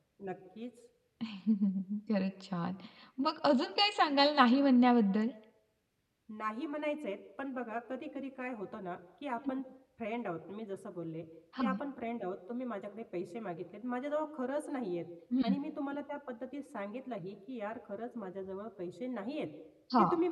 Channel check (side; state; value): both; identical; correlation 1.00